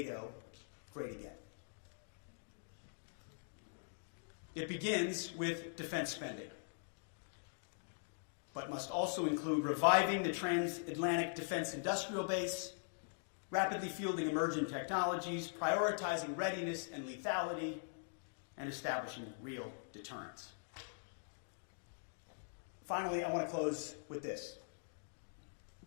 great again. It begins with defense spending, but must also include reviving the transatlantic defense industrial base, rapidly fielding emerging technologies, prioritizing readiness and lethality, and establishing real deterrence. Finally, I want to close with this.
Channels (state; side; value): silent; right; digital silence